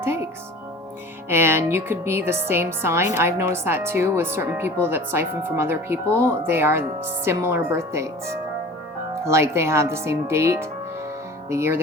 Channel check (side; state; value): both; normal; correlation 0.41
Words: takes. And you could be the same sign. I've noticed that too with certain people that siphon from other people. They are similar birth dates. Like they have the same date, the year